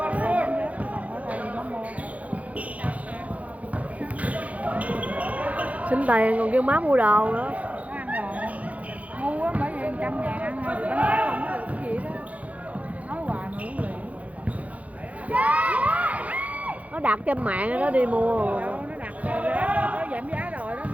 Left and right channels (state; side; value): late; left; 0.068 ms